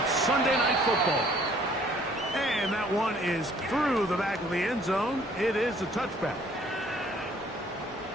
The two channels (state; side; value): normal; both; correlation 0.58